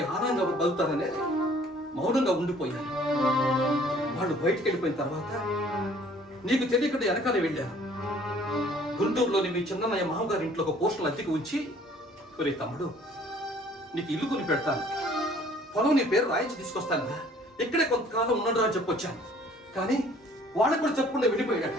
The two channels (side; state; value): both; normal; correlation 0.56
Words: ఆనందంగా బతుకుతారనే మౌనంగా ఉండిపోయాను. వాళ్ళు బయటకు వెళ్ళిపోయిన తర్వాత నీకు తెలియకుండా వెనకాలే వెళ్ళాను. గుంటూరులోని మీ చిన్నయ్య మామగారి ఇంట్లో ఒక పోస్టులు అద్దెకి ఉంచి, ఒరే తమ్ముడు, నీకు ఇల్లు కొని పెడతాను, పొలం నీ పేరు రాయించి తీసుకొస్తాను, ఇక్కడే కొంతకాలం ఉండడు అని చెప్పొచ్చాను. కానీ వాళ్ళకు కూడా చెప్పకుండా వెళ్ళిపోయాడు.